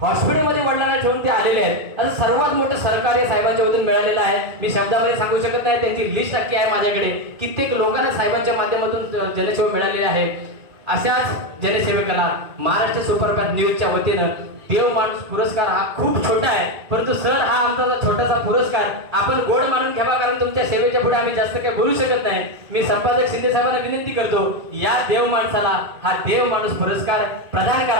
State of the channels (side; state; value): left; late; 2.1 ms